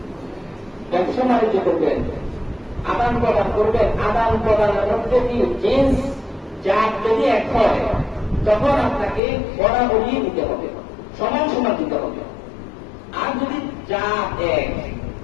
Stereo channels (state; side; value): drops out; right; at 9.2 s